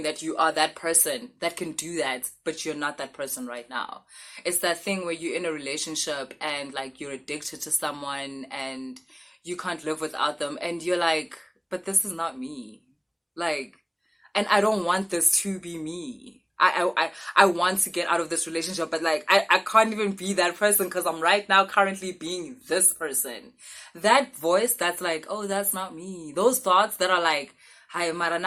that you are that person that can do that, but you're not that person right now. It's that thing where you're in a relationship and, like, you're addicted to someone and you can't live without them. And you're like, but this is not me. Like, and I don't want this to be me. I want to get out of this relationship, but, like, I can't even be that person because I'm right now currently being this person. That voice that's like, oh, that's not me. Those thoughts that are like, hi, Mara,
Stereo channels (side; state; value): both; identical; correlation 1.00